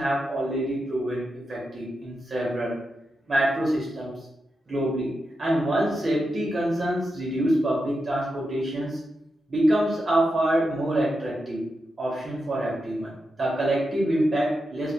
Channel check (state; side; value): normal; both; correlation 0.88